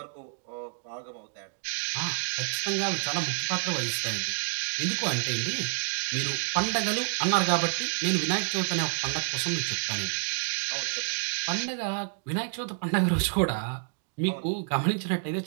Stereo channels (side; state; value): left; silent; 59 dB below the other